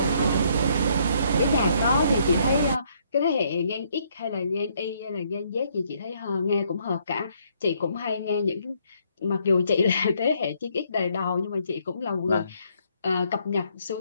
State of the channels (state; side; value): inverted; both; correlation -0.69